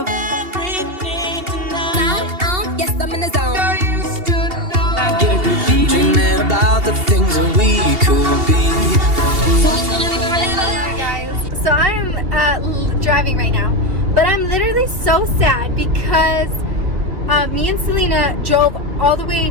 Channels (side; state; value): left; late; 2.8 ms